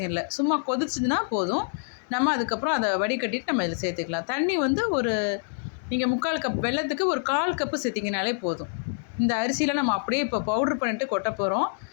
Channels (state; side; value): silent; right; 61 dB below the other